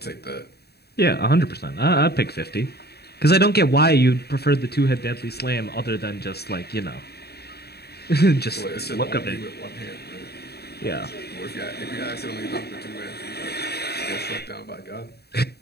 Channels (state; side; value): late; right; 0.47 ms